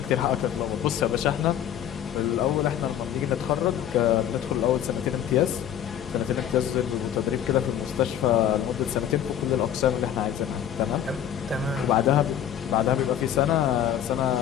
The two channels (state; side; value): quieter; right; 10.2 dB